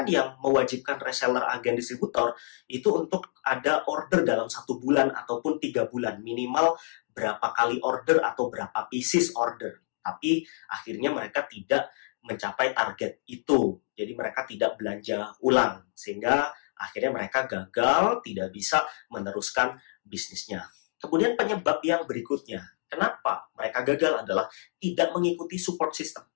yang mewajibkan reseller, agen, distributor itu untuk ada order dalam 1 bulan ataupun 3 bulan. Minimal berapa kali order atau berapa pieces order. Tapi akhirnya mereka tidak mencapai target itu. Jadi mereka tidak belanja ulang. Sehingga akhirnya mereka gagal, tidak bisa meneruskan bisnisnya. Kemudian penyebab yang berikutnya, kenapa mereka gagal adalah tidak mengikuti support system.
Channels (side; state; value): right; silent; digital silence